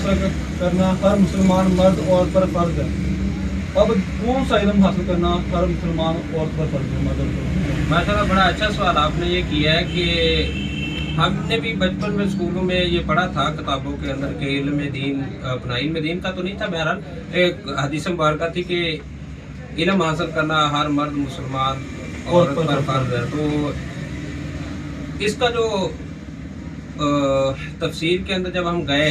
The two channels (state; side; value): identical; both; correlation 1.00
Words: کرنا ہر مسلمان مرد عورت پر فرض ہے۔ اب کون سا علم حاصل کرنا ہر مسلمان عورت پر فرض ہے؟ ماشاء اللہ، بڑا اچھا سوال آپ نے یہ کیا ہے کہ ہم نے بھی بچپن میں اسکولوں میں یہ پڑھا تھا کتابوں کے اندر کہ علم دین، اپنا علم دین کا تو نہیں تھا، بہرحال ایک حدیث مبارکہ تھی کہ علم حاصل کرنا ہر مرد مسلمان عورت پر فرض ہے۔ تو اس کا جو تفسیر کے اندر جب ہم